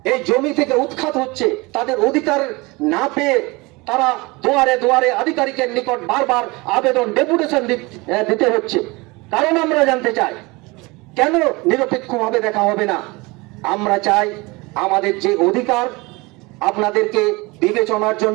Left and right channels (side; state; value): left; quieter; 24.5 dB